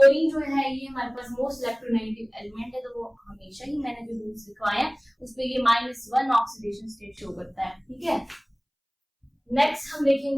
जो है ये हमारे पास मोस्ट इलेक्ट्रोनेगेटिव एलिमेंट है, तो वो हमेशा ही मैंने जो रूल्स लिखवाए हैं उस पे ये -1 ऑक्सीडेशन स्टेट शो करता है। ठीक है, नेक्स्ट हम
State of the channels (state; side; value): identical; both; correlation 1.00